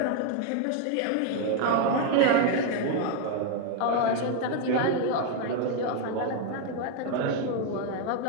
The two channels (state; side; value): different; both; correlation 0.01